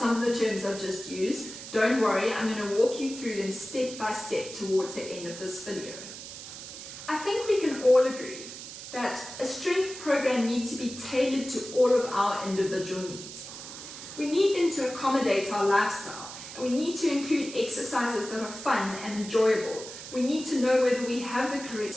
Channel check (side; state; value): right; noise; hiss, 12 dB below the sound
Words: of the terms I've just used, don't worry, I'm going to walk you through them step by step towards the end of this video. I think we can all agree that a strength program needs to be tailored to all of our individual needs. We need them to accommodate our lifestyle, and we need to include exercises that are fun and enjoyable. We need to know whether we have the correct